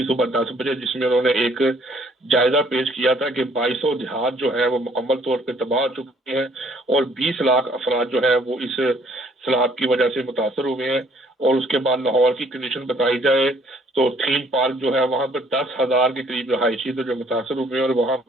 सुबह 10 बजे, जिसमें उन्होंने एक जायजा पेश किया था कि 2200 देहात जो है वो मुकम्मल तौर पे तबाह हो चुके हैं, और 20 लाख अफराद जो है वो इस सैलाब की वजह से मुतासर हुए हैं। और उसके बाद लाहौर की कंडीशन बताई जाए तो थीम पार्क जो है वहां पर 10,000 के करीब रहायशी तो जो मुतासर हुए हैं, और वहां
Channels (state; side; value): normal; both; correlation 0.61